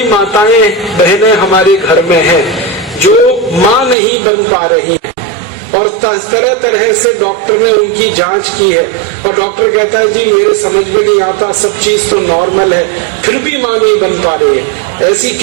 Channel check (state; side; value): drops out; left; at 4.0 s